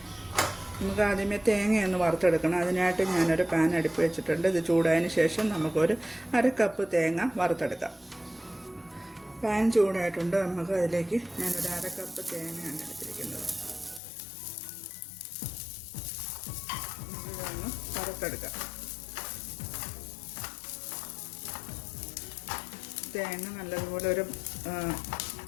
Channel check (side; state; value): right; drops out; at 14.0 s